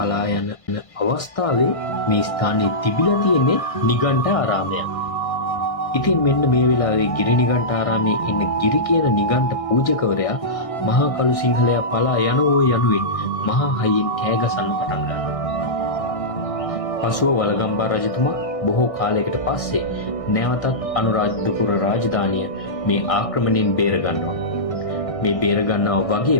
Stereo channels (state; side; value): late; right; 1.6 ms